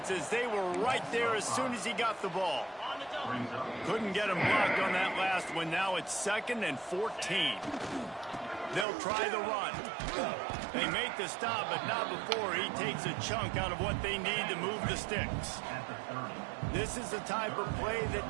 as they were right there as soon as he got the ball. Couldn't get him blocked on that last one. Now it's 2nd and 14. They'll try the run. They make the stop, but not before he takes a chunk out of what they need to move the sticks. This is the type of play that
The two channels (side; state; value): left; drops out; at 8.8 s